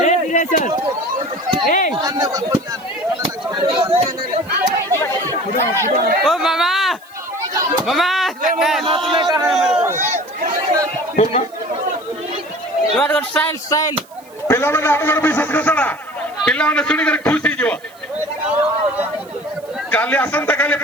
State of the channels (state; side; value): noise; right; hiss, 27 dB below the sound